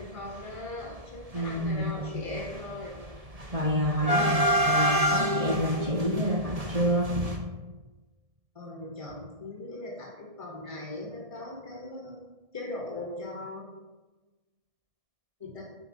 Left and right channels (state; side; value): late; left; 1.7 ms